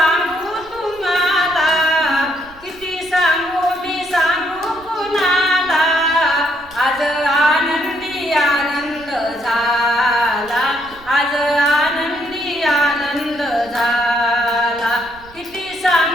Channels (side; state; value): right; noise; rumble, 24 dB below the sound